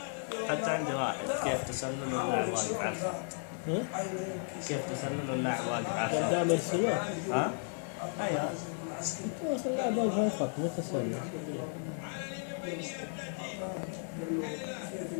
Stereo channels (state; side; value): silent; right; 55 dB below the other